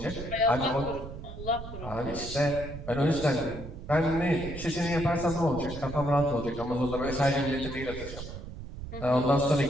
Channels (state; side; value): noise; right; rumble, 10 dB below the sound